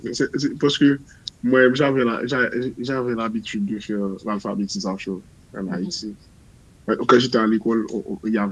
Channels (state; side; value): identical; both; correlation 1.00